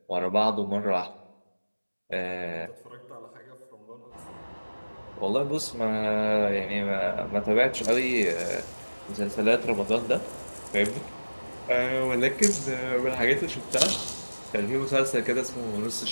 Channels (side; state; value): both; inverted; correlation -1.00